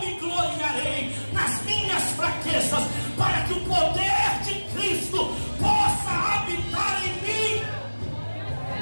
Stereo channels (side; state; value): both; inverted; correlation -1.00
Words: me gloriarei nas minhas fraquezas, para que o poder de Cristo possa habitar em mim.